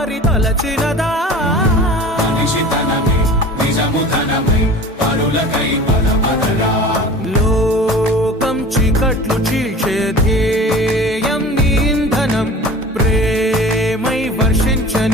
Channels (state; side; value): normal; both; correlation 0.40